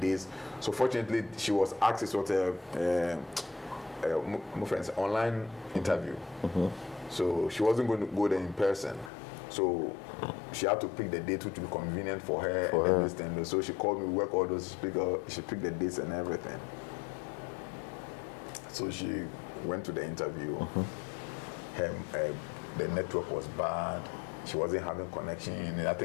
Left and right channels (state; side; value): drops out; right; at 9.1 s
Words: So fortunately, she was asked, it was my friend's online interview. So she wasn't going to go there in person. So she had to pick the date which would be convenient for her and everything. So she called me, we work all those, she picked the dates and everything. So she went to the interview. The network was bad. She wasn't having connection. I